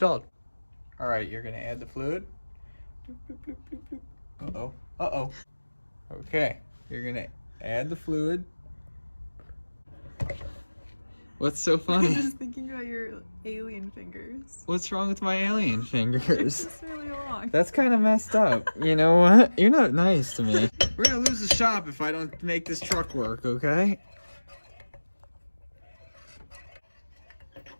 All right, you're gonna add the fluid. Uh-oh, uh-oh. Okay, you're gonna add the fluid. What's so funny? I'm just thinking about your alien fingers. What's wrong with my alien fingers? It's just really long. That's kind of messed up. You know what? You're not nice to me. We're gonna lose the shop if I don't make this truck work, okay?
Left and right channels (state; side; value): inverted; both; correlation -1.00